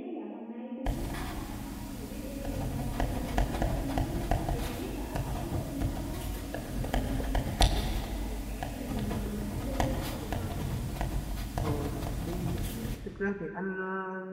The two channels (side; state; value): both; identical; correlation 1.00